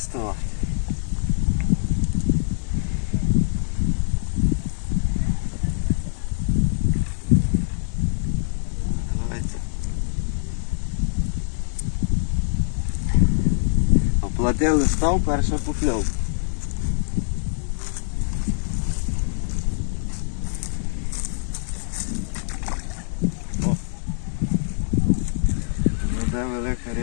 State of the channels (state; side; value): silent; right; digital silence